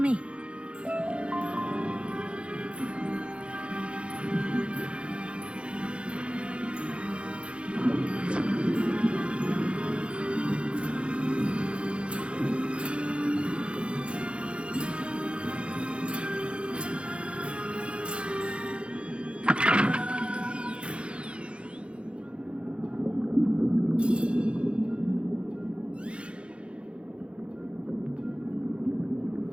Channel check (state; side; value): late; left; 0.058 ms